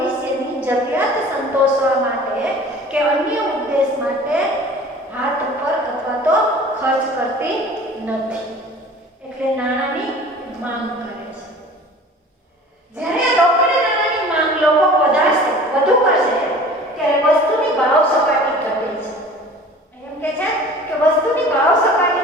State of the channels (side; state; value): both; normal; correlation 0.44